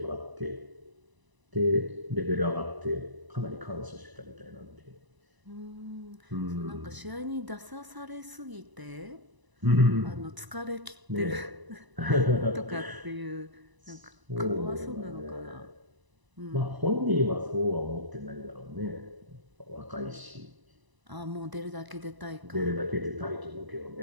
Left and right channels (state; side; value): late; left; 1.0 ms